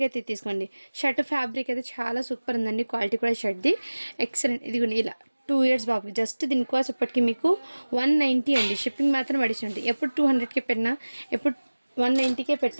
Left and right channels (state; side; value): inverted; both; correlation -1.00